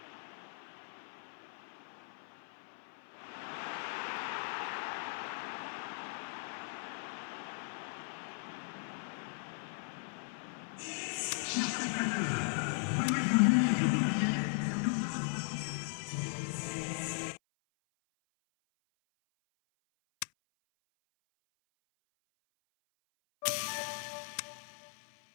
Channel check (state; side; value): silent; right; 52 dB below the other